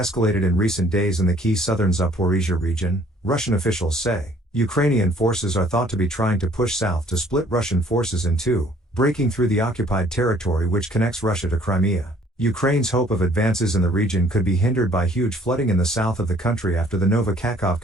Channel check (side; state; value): both; normal; correlation 0.59